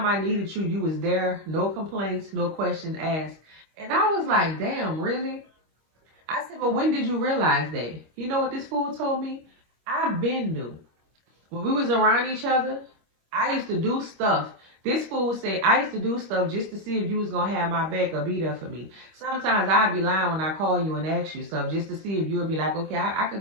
I needed you, you was there. No complaints, no questions asked. And I was like, damn, really? I said, well, when did you realize that? You know what this fool told me? I've been new. When we was around each other, I used to do stuff. This fool said, I used to do stuff just to see if you was going to have my back or be there for me. Sometimes I'd be lying when I call you and ask you stuff just to see if you would be like, okay, I could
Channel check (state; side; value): late; left; 26 ms